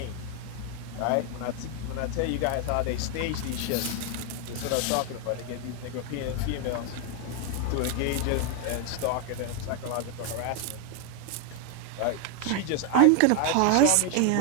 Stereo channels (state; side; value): different; both; correlation 0.00